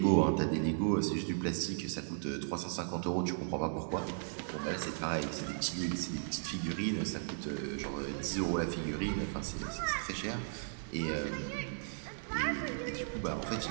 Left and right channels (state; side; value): silent; left; digital silence